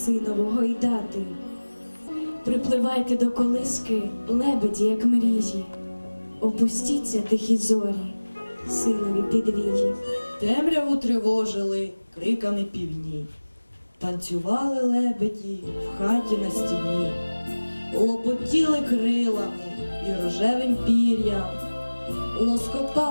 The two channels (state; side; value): inverted; both; correlation -1.00